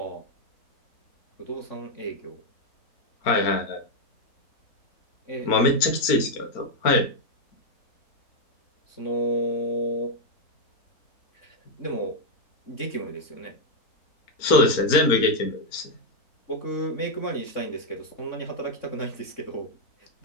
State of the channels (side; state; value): right; late; 4.3 ms